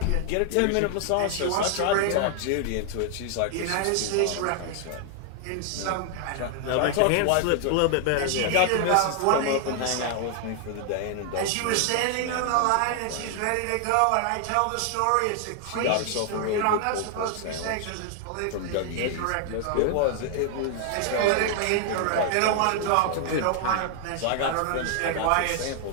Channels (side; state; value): both; different; correlation 0.00